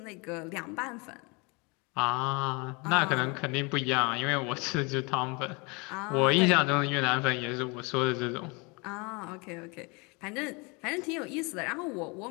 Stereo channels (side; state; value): right; quieter; 29.3 dB